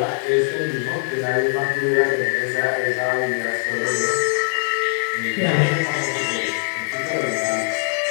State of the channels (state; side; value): silent; right; 65 dB below the other